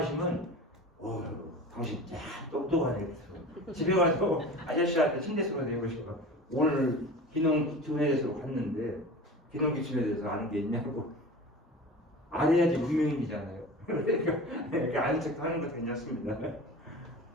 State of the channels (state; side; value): normal; both; correlation 0.35